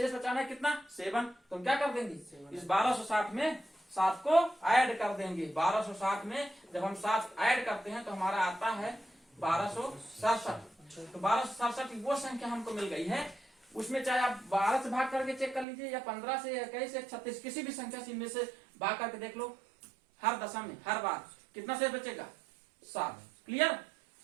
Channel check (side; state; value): left; drops out; at 15.7 s